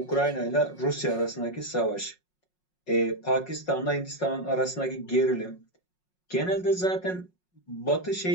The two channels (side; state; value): right; late; 5.5 ms